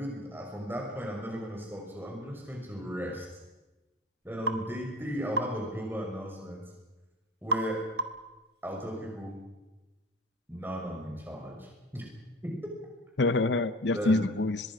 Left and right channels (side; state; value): both; normal; correlation 0.39